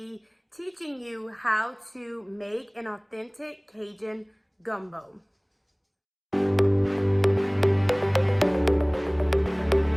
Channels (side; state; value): both; identical; correlation 1.00